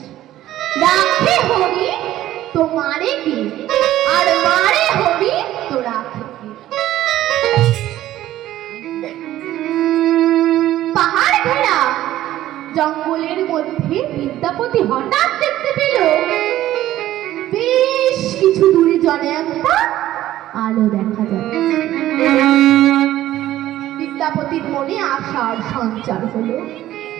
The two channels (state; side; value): quieter; left; 13.9 dB